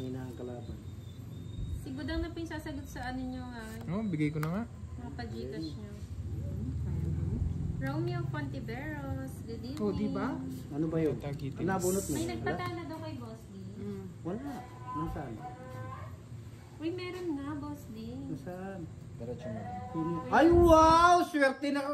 ang kalaban. Si Budang na po yung sasagot sa ano nyo Oh, bigay ko na nga. mga pajigas nyo. Romeo Fontiveros, good evening. Oh, di ba? Ano ba yun? Tagitin. Ano nabunot mo? May Wala? nagpatala daw kay Boss D. Wala. Nasaan? Uy, meron nga, Boss D. Nasaan? Diretso mo. Ay, wow! Swerte na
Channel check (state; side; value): identical; both; correlation 1.00